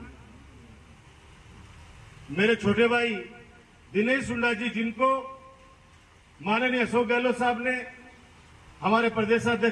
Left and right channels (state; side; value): identical; both; correlation 1.00